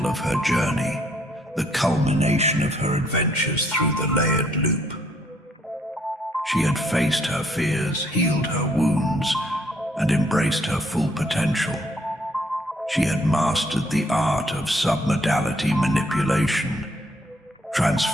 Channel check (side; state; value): both; normal; correlation 0.68